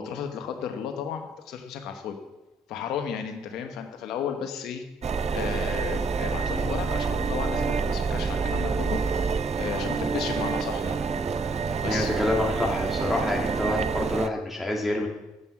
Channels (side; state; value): both; normal; correlation 0.68